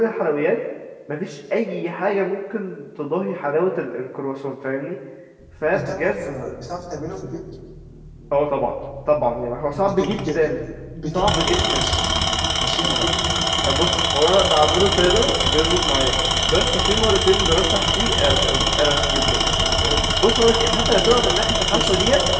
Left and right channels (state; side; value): identical; both; correlation 1.00